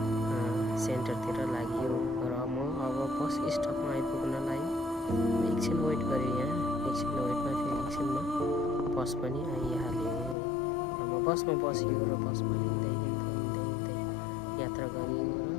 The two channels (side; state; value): right; drops out; at 10.4 s